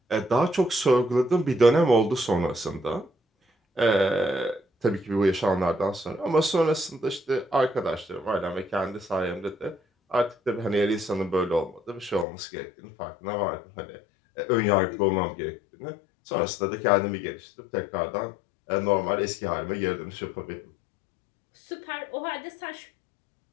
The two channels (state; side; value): drops out; right; at 12.2 s